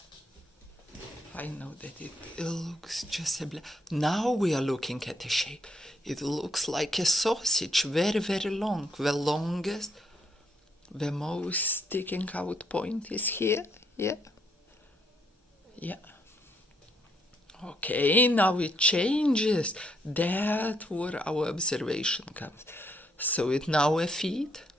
I know that it looks just a now we are looking at a shape. It looks like a sausage, very, very long. The longest, the most sticking out point is here. Yeah. Yeah. Okay, now it changes. That's where our observation comes. So it's now a feet.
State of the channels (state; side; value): normal; both; correlation 0.73